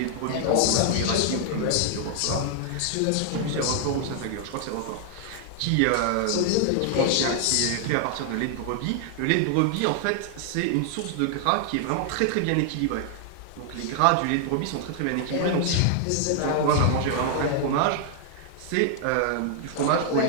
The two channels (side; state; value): both; different; correlation 0.00